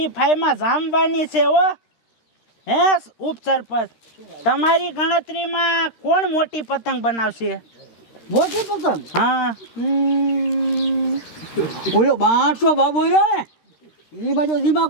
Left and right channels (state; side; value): late; right; 13 ms